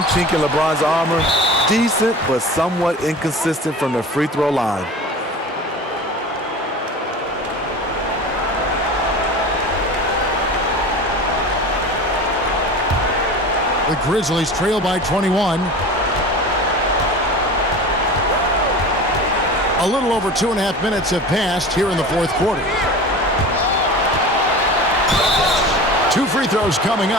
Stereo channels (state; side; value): normal; both; correlation 0.35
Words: chink in LeBron's armor, decent but somewhat inconsistent from the free throw line. The Grizzlies trail by 21. A little over 2.5 minutes have passed here in the fourth quarter. 2 free throws coming